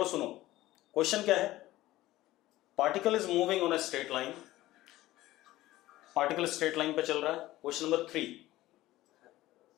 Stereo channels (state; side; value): quieter; right; 16.4 dB